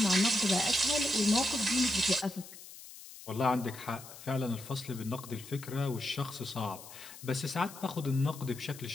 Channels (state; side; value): noise; left; hiss, 16 dB below the sound